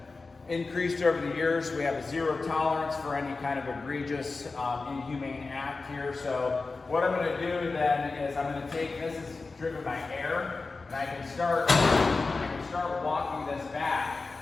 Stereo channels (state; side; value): quieter; right; 3.9 dB